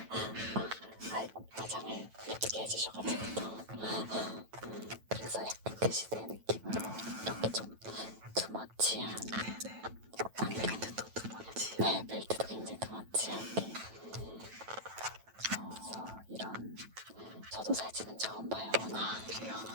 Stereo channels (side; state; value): left; late; 9.1 ms